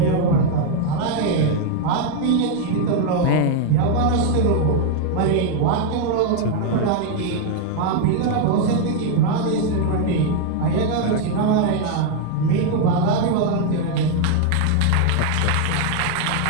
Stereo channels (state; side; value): different; both; correlation 0.00